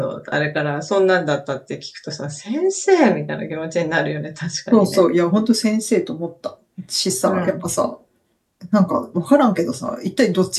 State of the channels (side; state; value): both; identical; correlation 1.00